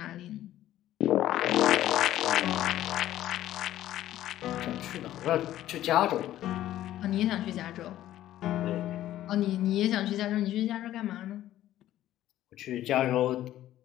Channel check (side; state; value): right; quieter; 13.3 dB